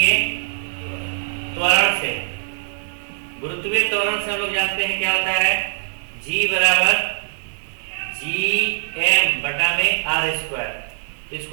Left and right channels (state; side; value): silent; left; digital silence